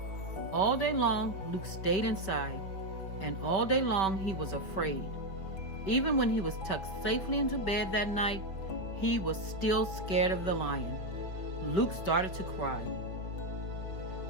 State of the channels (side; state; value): right; late; 5.2 ms